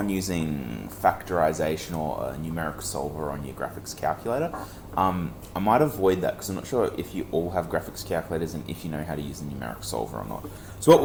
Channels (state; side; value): identical; both; correlation 1.00